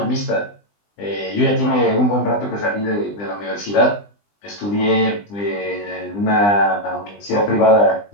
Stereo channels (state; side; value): late; right; 20 ms